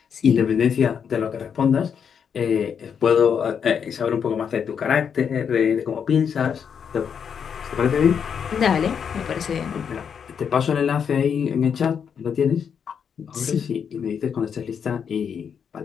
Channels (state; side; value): quieter; right; 7.3 dB